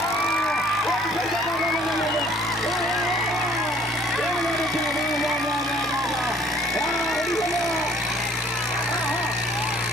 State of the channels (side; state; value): both; normal; correlation 0.58